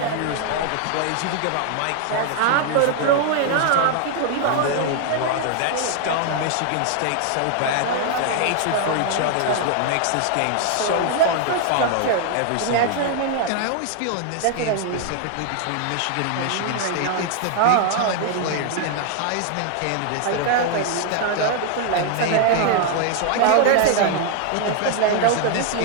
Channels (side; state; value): both; different; correlation 0.00